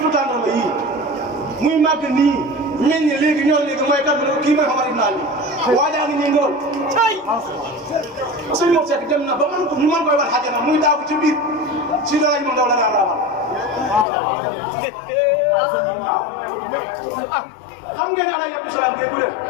tàndarma yii muy màgg nii meññ léegi ñor léegi mooy kat kii mooy Omar ibn Ali waajaa ngi nii ngóor sëñ Mor Seck dem na ba mën ko ñu mën koy war xajana muy daagu ci biir si dara ñu ndaw la daan raamal waaw xam ngeen ne Alaaji Abdou Salaam bi du leen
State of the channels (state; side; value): drops out; right; at 14.1 s